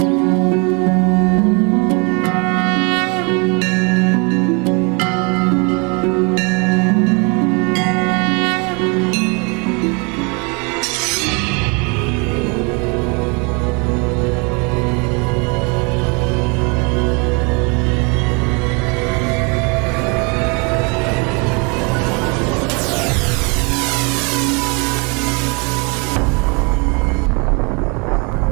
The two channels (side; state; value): left; quieter; 32.0 dB